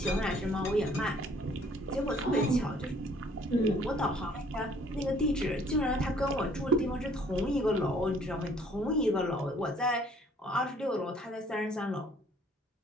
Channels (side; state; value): both; normal; correlation 0.59